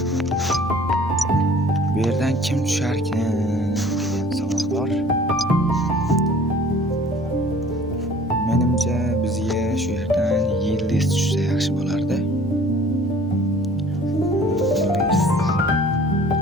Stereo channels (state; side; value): normal; both; correlation 0.51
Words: bu yerdan kim tusharkan degan savol bor. Menimcha bizga shu yerdan Yildiz tushsa yaxshi bo'lardi.